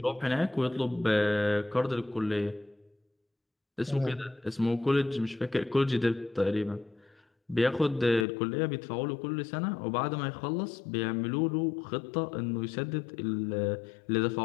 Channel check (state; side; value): drops out; right; at 8.2 s